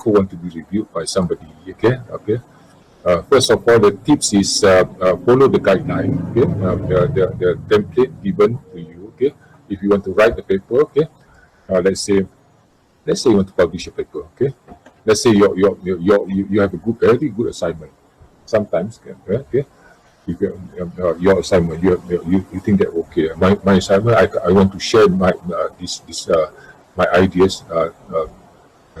want to be reviewed by somebody, okay? First of all, the tips is follow the guideline, okay? The template given to you, okay? If you want to write the paper, okay? Let's say you want to publish a paper, okay? Let's say you have a very good assignment. Sometimes, okay? If your assignment, you think that okay, my assignment, I want to share my my ideas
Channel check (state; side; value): identical; both; correlation 1.00